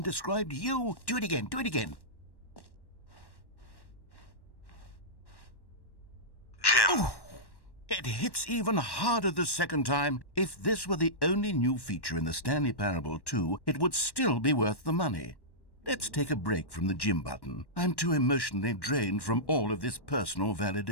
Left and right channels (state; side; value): late; right; 1.1 ms